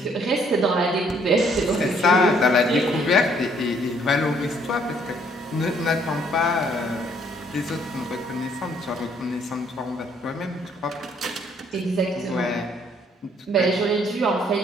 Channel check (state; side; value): normal; both; correlation 0.65